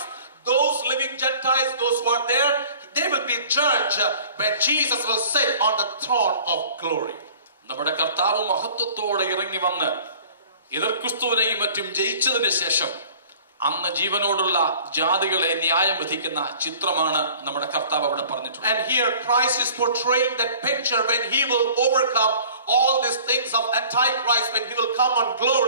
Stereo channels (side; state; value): both; inverted; correlation -0.48